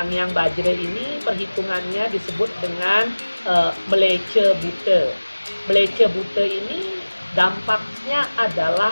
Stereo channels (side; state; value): both; inverted; correlation -1.00